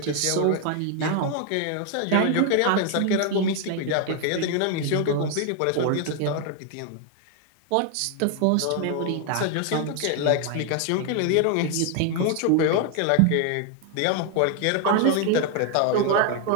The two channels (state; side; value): different; both; correlation 0.00